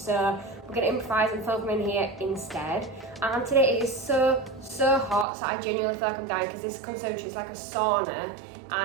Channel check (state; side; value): drops out; left; at 5.2 s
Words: we're gonna improvise and film in here instead. And today it is so hot, so I genuinely feel like I'm dying because this conservatory is like a sauna,